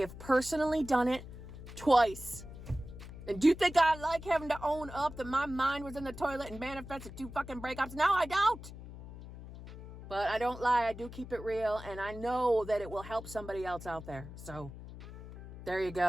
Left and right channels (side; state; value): left; noise; hum, 13 dB below the sound